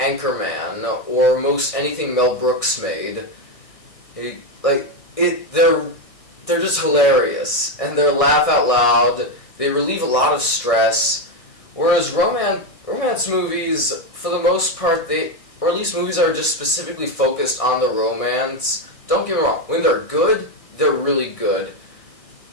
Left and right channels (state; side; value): late; right; 1.6 ms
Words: or most anything Mel Brooks made, they're just hilarious, and they're laugh out loud, they relieve a lot of stress, whereas romance movies, for the most part, or at least movies that are just specifically focused on the romance. Don't get me wrong, when they're good, they're really good,